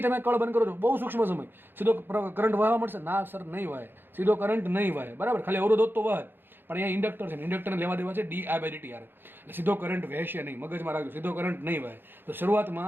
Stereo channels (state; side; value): late; left; 0.099 ms